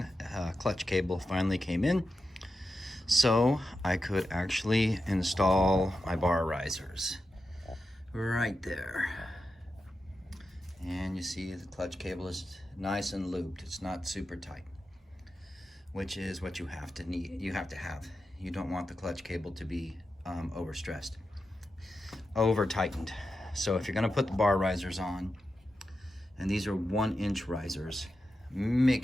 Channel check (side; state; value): both; normal; correlation 0.90